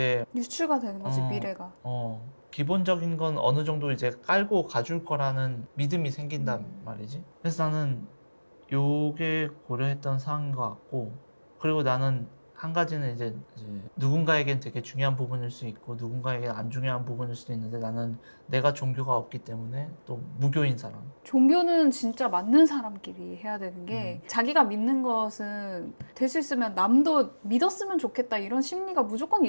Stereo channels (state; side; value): inverted; both; correlation -1.00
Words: 유추가 되는 거지, 어. 미래가. 기본적인 건 어느 정도 이제 깔고 가줄 거라는 믿음이 생긴단 말이지. 그래서 나는 요게 고려했던 사항인 것 같고, 그리고 나는 한 가지는 이제 누군가에겐 되게 중요한 부분일 수 있고 누군가에겐 안 중요한 부분일 수도 있는데, 나는 내가 종교가 없기 때문에 또 무교인 사람. 종교는 진짜 맞는 사람끼리 해야 되는 게 자기가 믿는 것은 될 수 있으면 남도 믿었으면 좋겠다 이런 심리가 무조건